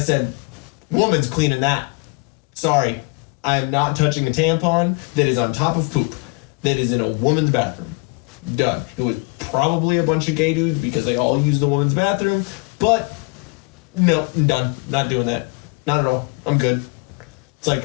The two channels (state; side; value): quieter; right; 31.9 dB